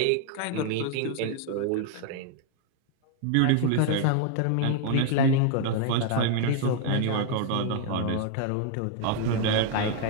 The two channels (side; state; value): both; different; correlation 0.00